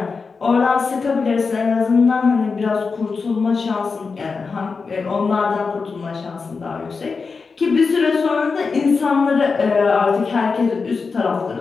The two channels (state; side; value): quieter; right; 4.8 dB